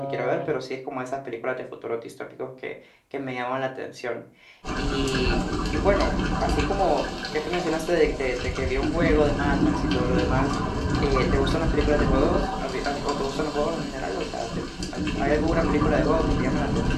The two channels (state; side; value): identical; both; correlation 1.00